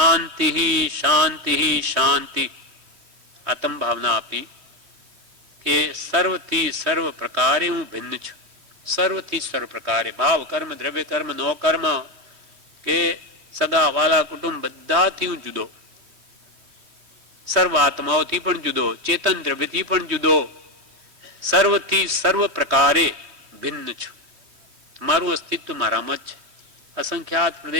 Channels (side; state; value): left; late; 3.2 ms